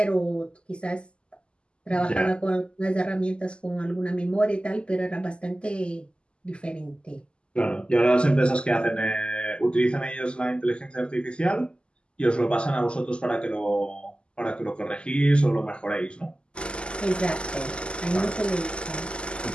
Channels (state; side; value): late; right; 0.051 ms